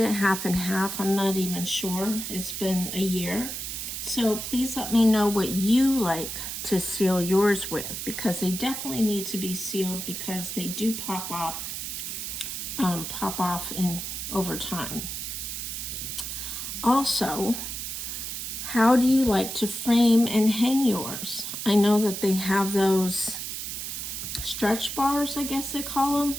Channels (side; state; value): right; noise; hiss, 5 dB below the sound